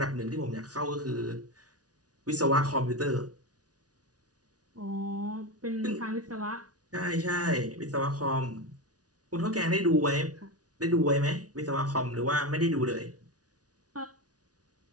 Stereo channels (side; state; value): left; late; 0.68 ms